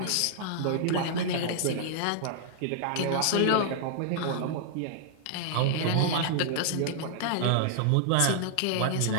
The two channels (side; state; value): both; different; correlation -0.01